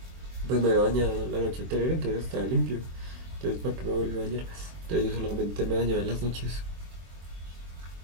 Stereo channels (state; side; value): late; left; 24 ms